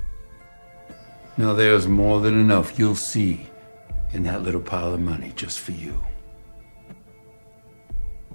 Now, there's more than enough you'll see in that little pile of money just for you.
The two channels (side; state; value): both; inverted; correlation -1.00